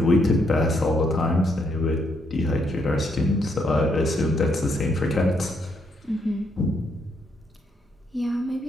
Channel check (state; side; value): normal; both; correlation 0.75